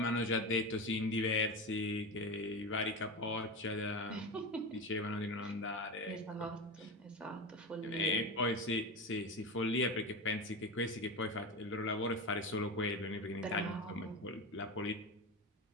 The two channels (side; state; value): both; normal; correlation 0.22